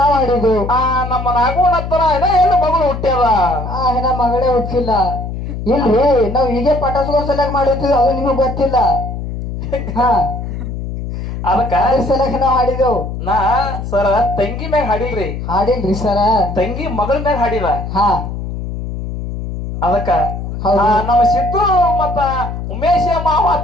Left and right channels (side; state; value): left; noise; hum, 6 dB below the sound